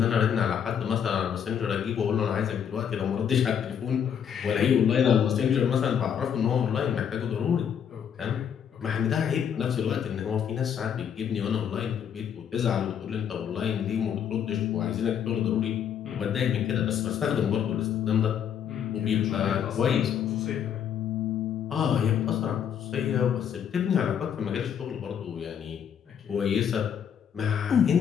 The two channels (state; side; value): quieter; right; 8.3 dB